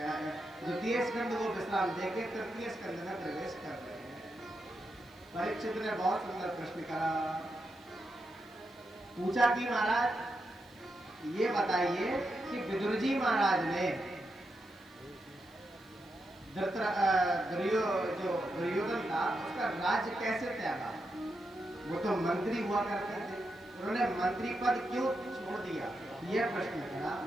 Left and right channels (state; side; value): noise; left; hiss, 29 dB below the sound